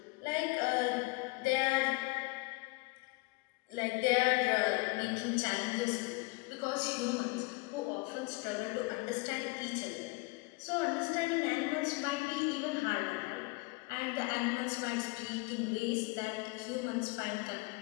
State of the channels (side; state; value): right; quieter; 25.3 dB